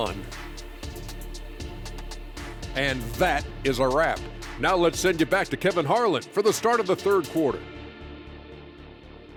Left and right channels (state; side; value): identical; both; correlation 1.00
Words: And that is a wrap. Now let's send you back to Kevin Harlan for the start of the third quarter.